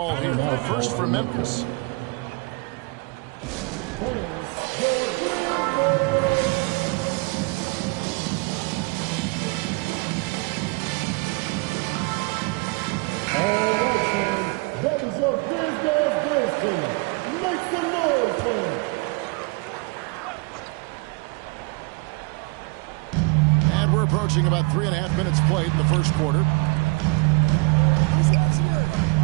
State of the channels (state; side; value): quieter; left; 28.8 dB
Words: here. The first for Memphis. All right, fans. That was your Grizz dance team. Make some noise, fans. And we're approaching about 3.5 minutes played in the first quarter.